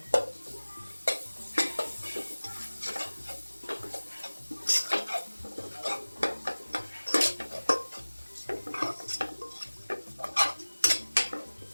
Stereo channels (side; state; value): both; inverted; correlation -1.00